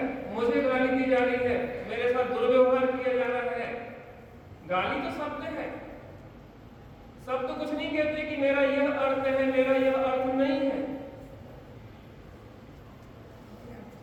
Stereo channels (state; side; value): identical; both; correlation 1.00